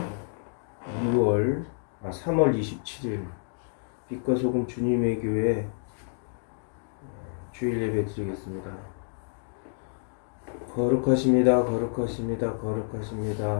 3월 27일 빛과 소금 주님의 교회 주일 예배 드리겠습니다. 거룩하십니다. 거룩하십니다.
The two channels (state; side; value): silent; right; digital silence